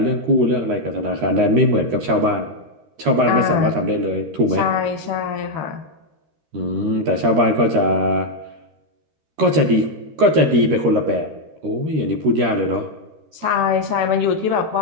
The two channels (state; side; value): late; left; 13 ms